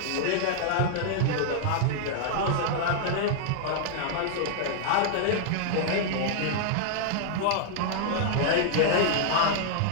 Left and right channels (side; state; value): both; different; correlation -0.01